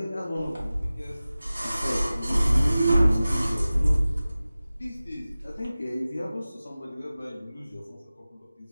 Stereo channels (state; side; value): inverted; both; correlation -0.96